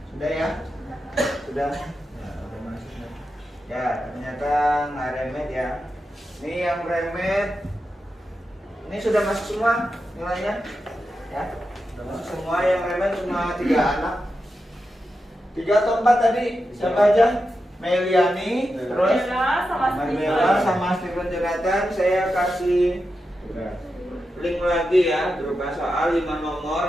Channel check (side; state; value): both; normal; correlation 0.89